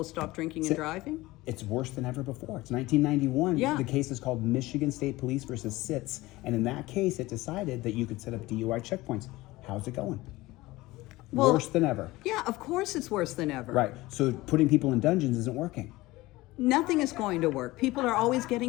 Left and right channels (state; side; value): quieter; right; 19.4 dB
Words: stop drinking and driving? It's worse than ever before. It's 1991. Yeah. The case is called Michigan State Police versus SITS. And in that case, it decided that you could set up DUI checkpoints. How's it going? Well, worse than ever. Yeah, of course it's worse than ever. Right. So putting people in dungeons isn't working. Nothing is going to work. People are always